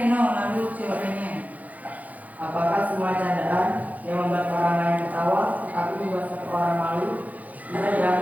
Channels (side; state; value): left; late; 0.076 ms